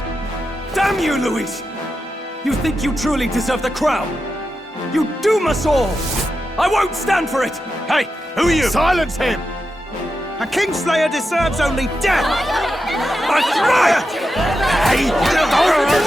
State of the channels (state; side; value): normal; both; correlation 0.89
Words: Damn you, Luis! You think you truly deserve the crown? You doom us all! I won't stand for it! Hey, who are you? Silence him! A Kingslayer deserves only death! That's right! Hey,